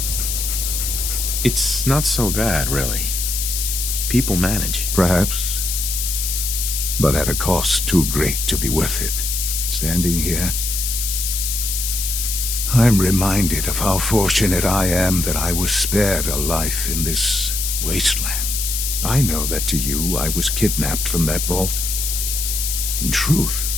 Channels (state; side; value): noise; left; hiss, 1 dB below the sound